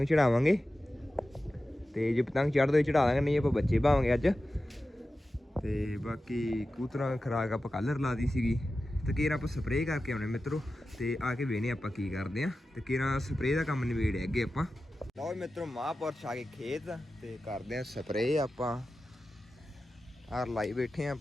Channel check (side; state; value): both; normal; correlation 0.93